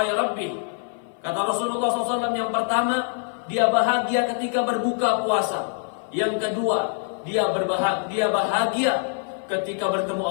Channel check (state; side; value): silent; right; 56 dB below the other